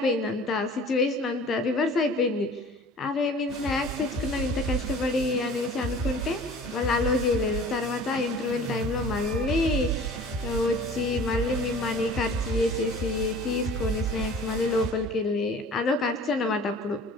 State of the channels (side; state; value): both; normal; correlation 0.45